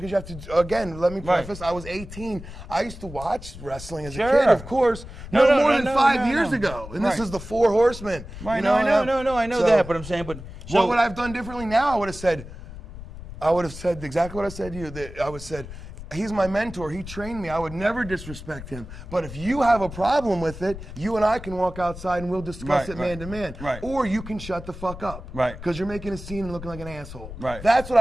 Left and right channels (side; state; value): left; noise; rumble, 13 dB below the sound